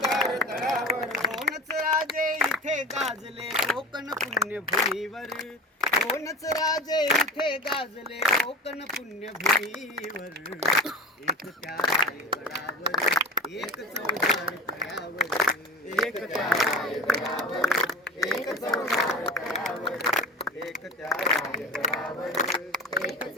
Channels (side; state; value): both; normal; correlation 0.32